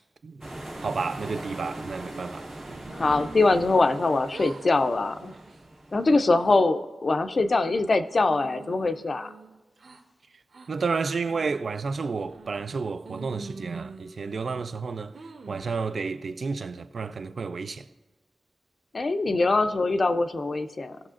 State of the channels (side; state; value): both; normal; correlation 0.92